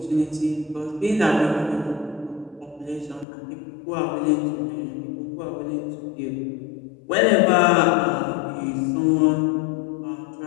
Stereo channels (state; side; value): drops out; right; at 3.2 s